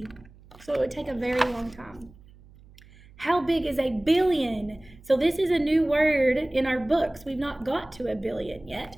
So it would take a very long time. How big is a billion? So this is a new word in our books. We've not got to 1 billion yet.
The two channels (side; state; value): right; noise; hum, 24 dB below the sound